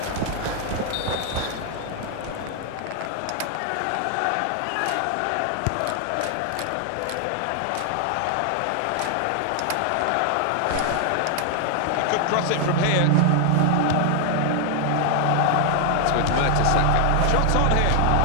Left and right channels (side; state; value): both; different; correlation 0.00